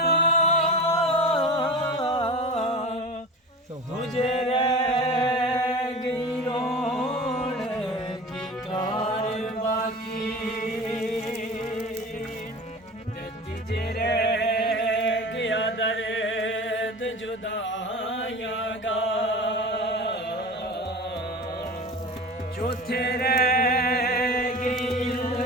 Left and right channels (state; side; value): normal; both; correlation 0.34